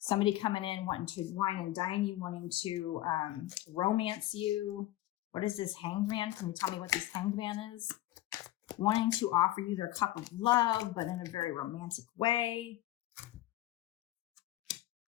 coming in wanting to wine and dine you, wanting to romance you. What is this Hanged Man? Can you tell me what this Hanged Man is? Wanting to offer you their cup of love, but in a very romantic way.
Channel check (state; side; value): quieter; right; 15.4 dB